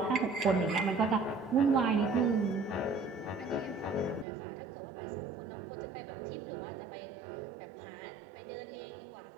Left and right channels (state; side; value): drops out; left; at 4.2 s